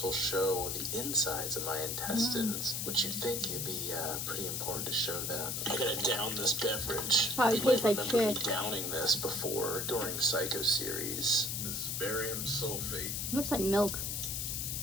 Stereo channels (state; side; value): noise; left; hiss, 2 dB below the sound